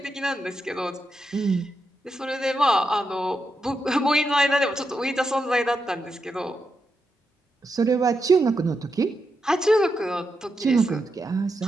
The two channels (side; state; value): both; normal; correlation 0.85